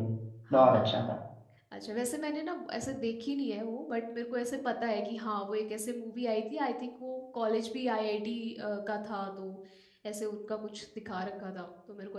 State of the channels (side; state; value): both; identical; correlation 1.00